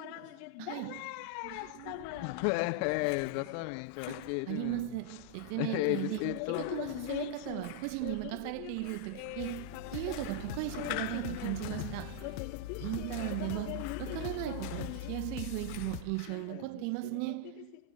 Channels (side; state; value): both; different; correlation -0.01